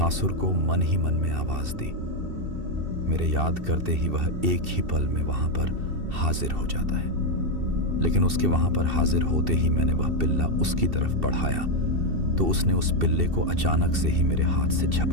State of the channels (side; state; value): left; late; 2.7 ms